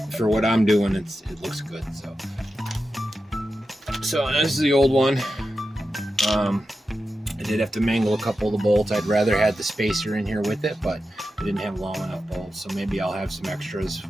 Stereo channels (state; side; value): normal; both; correlation 0.91